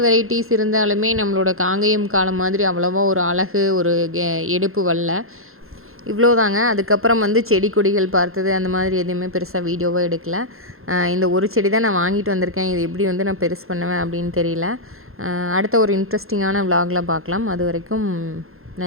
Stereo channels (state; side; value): late; left; 0.61 ms